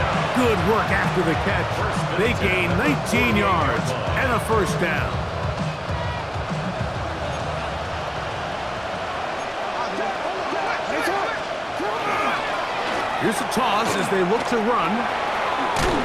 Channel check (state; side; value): identical; both; correlation 1.00